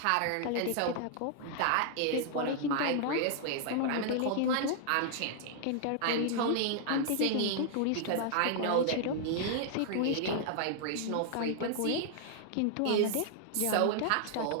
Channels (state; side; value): different; both; correlation 0.00